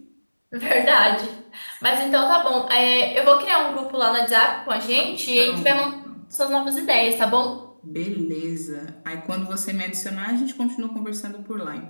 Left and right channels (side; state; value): both; inverted; correlation -1.00